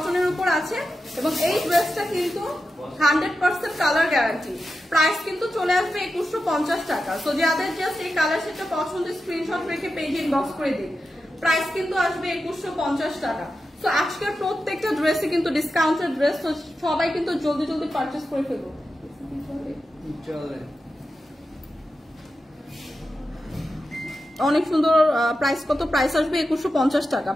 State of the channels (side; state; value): both; normal; correlation 0.90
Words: উপর আছে এবং এই ড্রেসটা কিন্তু 100% কালার গ্যারান্টি। প্রাইস কিন্তু চলে আসবে 2150 টাকা। সো যাদের জাস্ট এই কালার সেটা পছন্দ স্ক্রিনশট রেখে পেজ ইনবক্স করে দিন। প্রাইস কিন্তু আসবে 2150 টাকা। তো আজকের প্রত্যেকটা ড্রেসে কিন্তু ডিসকাউন্টেড ড্রেস, তো সবাই কিন্তু জলদি জলদি পারচেজ করে ফেলবো। অনেক সুন্দর প্রাইস, কত প্রাইস আসবে 2150 টাকা।